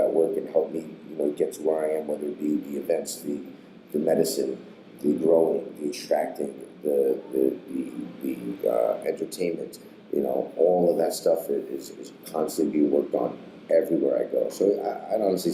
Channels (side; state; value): both; identical; correlation 1.00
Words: work and help me, get to where I am, whether it be the events, the medicine, the growing, the extracting, the entertainment, all of that stuff is constantly being worked on everywhere I go. So I'd honestly